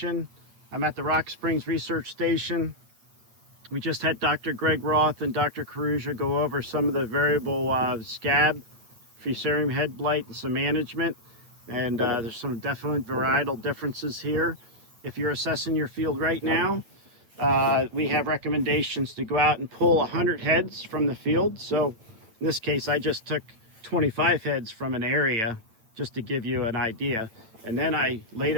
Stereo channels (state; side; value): late; left; 8.9 ms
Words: I'm at the Rock Springs Research Station. We just had Dr. Greg Roth and Dr. Caruja go over some of the variable scab, fusarium head blight, and some management. And there's some definite varietal differences here. If you're assessing your field right now, we have recommendations to go out and pull 100 heads from the field. So in this case, I just took 25 heads from an area just to give you an idea. And then I laid